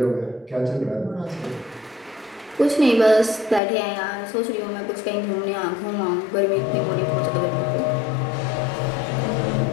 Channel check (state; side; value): drops out; right; at 3.6 s